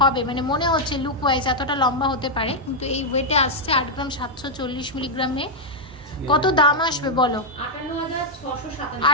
মানে মনে হচ্ছে লুক ওয়াইজ এতটা লম্বা হতে পারে, কিন্তু এই ওয়েটে আসছে 8 গ্রাম 740 মিলিগ্রামে। কত দাম আসবে বলো?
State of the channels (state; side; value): normal; both; correlation -0.02